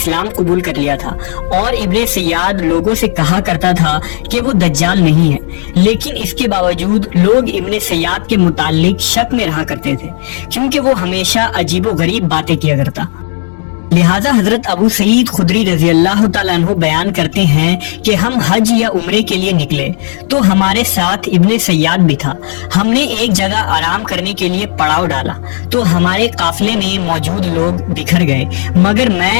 قبول کر لیا تھا، اور ابن سیاد لوگوں سے کہا کرتا تھا کہ وہ دجال نہیں ہے، لیکن اس کے باوجود لوگ ابن سیاد کے متعلق شک میں رہا کرتے تھے کیونکہ وہ ہمیشہ عجیب و غریب باتیں کیا کرتا۔ لہٰذا حضرت ابو سعید خدری رضی اللہ تعالیٰ عنہ بیان کرتے ہیں کہ ہم حج یا عمرے کے لیے نکلے تو ہمارے ساتھ ابن سیاد بھی تھا۔ ہم نے ایک جگہ آرام کرنے کے لیے پڑاؤ ڈالا تو ہمارے قافلے میں موجود لوگ بکھر گئے، مگر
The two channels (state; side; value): silent; right; digital silence